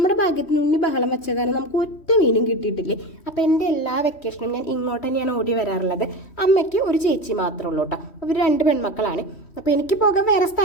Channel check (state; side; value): late; right; 3.1 ms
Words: ഭാഗ്യത്തിന് ഉണ്ണി ബഹളം വെച്ച കാരണം നമുക്ക് ഒറ്റ മീനും കിട്ടിയിട്ടില്ലേ. അപ്പം എൻ്റെ എല്ലാ വെക്കേഷനും ഞാൻ ഇങ്ങോട്ട് തന്നെയാണ് ഓടി വരാറുള്ളത്. അമ്മയ്ക്ക് ഒരു ചേച്ചി മാത്രമേ ഉള്ളൂ കേട്ടോ. അവർ 2 പെൺമക്കളാണ്. അപ്പോൾ എനിക്ക് പോകാൻ വേറെ